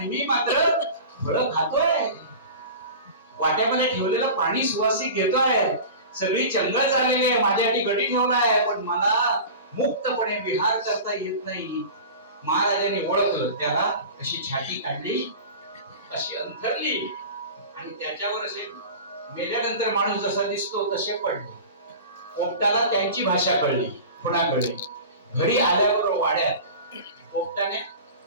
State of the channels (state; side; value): inverted; both; correlation -0.34